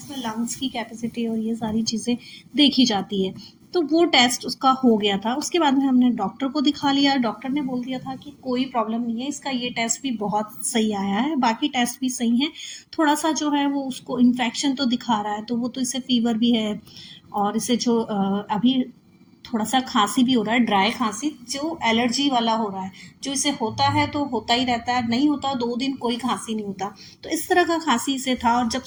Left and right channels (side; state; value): both; identical; correlation 1.00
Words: लंग्स की कैपेसिटी और ये सारी चीज़ें देखी जाती है। तो वो टेस्ट उसका हो गया था। उसके बाद में हमने डॉक्टर को दिखा लिया। डॉक्टर ने बोल दिया था कि कोई प्रॉब्लम नहीं है, इसका ये टेस्ट भी बहुत सही आया है, बाकी टेस्ट भी सही हैं। थोड़ा सा जो है वो उसको इन्फेक्शन तो दिखा रहा है, तो वो तो इसे फीवर भी है। और इसे जो अभी थोड़ा सा खांसी भी हो रहा है, ड्राई खांसी जो एलर्जी वाला हो रहा है। जो इसे होता है तो होता ही रहता है, नहीं होता 2 दिन कोई खांसी नहीं होता। तो इस तरह का खांसी इसे था। और जब